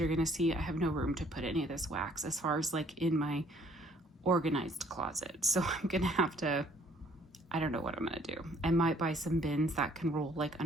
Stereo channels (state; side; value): normal; both; correlation 0.61